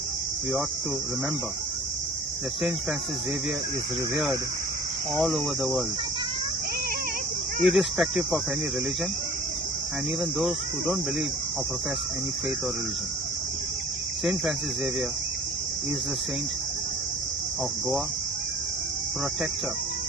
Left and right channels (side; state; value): both; normal; correlation 0.46